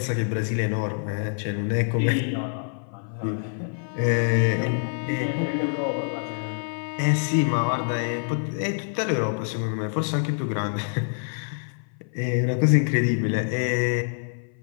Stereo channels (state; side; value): silent; right; 56 dB below the other